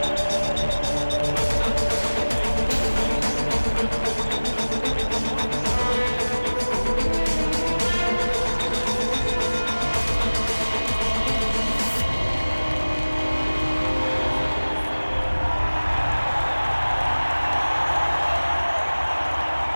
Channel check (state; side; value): inverted; both; correlation -1.00